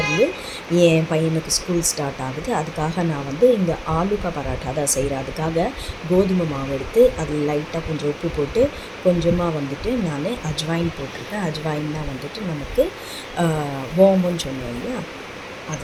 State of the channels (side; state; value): both; identical; correlation 1.00